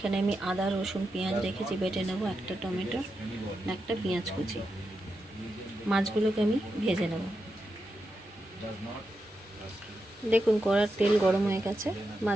আমি আদা, রসুন, পেঁয়াজ রেখেছি, বেটে নেব। একটা টমেটো, একটা পেঁয়াজ কুচি। মাছগুলোকে আমি ভেজে নেব। দেখুন কড়ার তেল গরম হয়ে গেছে,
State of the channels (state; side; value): normal; both; correlation 0.87